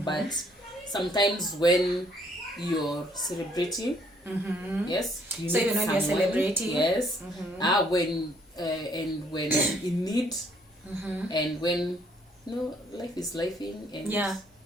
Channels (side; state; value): both; normal; correlation 0.66